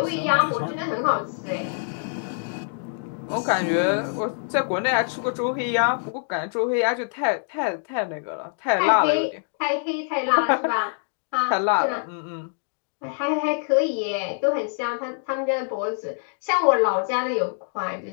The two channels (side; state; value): right; silent; digital silence